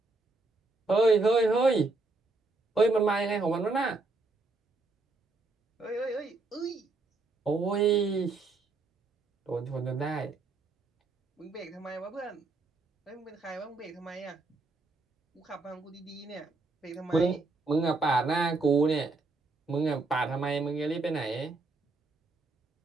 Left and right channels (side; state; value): left; quieter; 3.4 dB